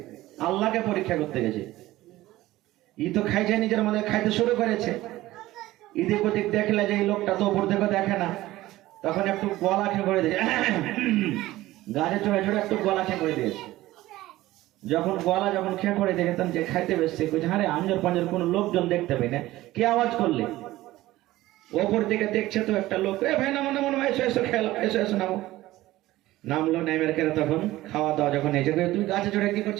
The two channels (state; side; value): quieter; left; 16.7 dB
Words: আল্লাহকে পরীক্ষা করতে গেছে। ই তো খাইছে, নিজের মধ্যে খাইতে শুরু করেছে। এদিক ওদিক দেখলে যে এই লোকটা তো উপর থেকে দেখে না, তখন একটু গলা খেয়ে করে দিয়েছে, গাছে চড়ে চড়ে একটু গলা খেয়ে করে দিয়েছে। যখন খেয়ে করে দিয়েছে, তখন যে খাইতে বসছে, আরে আঞ্জর পাঞ্জর কোনো লোকজন দেখতে পাই না, কে আওয়াজ করলে? ওপর দিকে দেখছে তো একটা লোক, এ ভাই নামো নামো, এসো এসো খেলা, এসো এসো নামো। নামলো, নেমের কেন তখন খাওয়া দাওয়া যখন এসে, তুই গাছে চড়ে কি